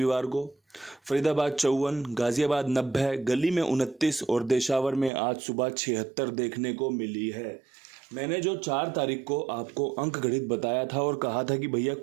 को। फरीदाबाद 54, गाजियाबाद 90, गली में 29 और देशावर में आज सुबह 76 देखने को मिली है। मैंने जो 4 तारीख को आपको अंक गणित बताया था और कहा था कि भैया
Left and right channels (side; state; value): left; drops out; at 5.1 s